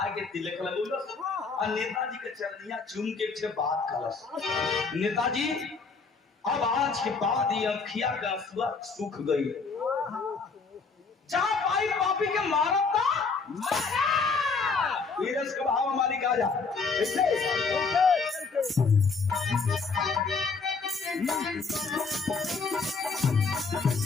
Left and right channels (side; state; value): right; quieter; 4.6 dB